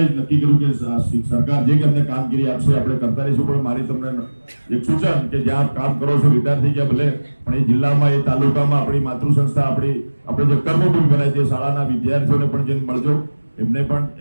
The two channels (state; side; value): inverted; both; correlation -1.00